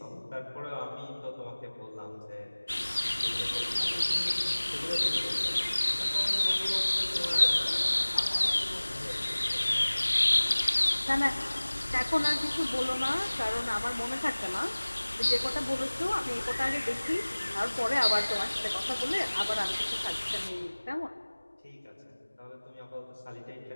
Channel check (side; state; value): both; inverted; correlation -1.00